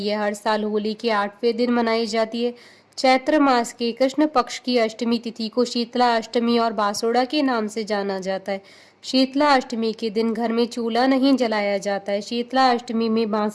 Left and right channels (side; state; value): both; identical; correlation 1.00